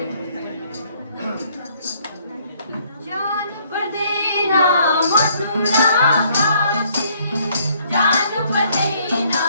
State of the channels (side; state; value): both; inverted; correlation -0.65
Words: जान पर देना मथुरा काशी, जान पर देना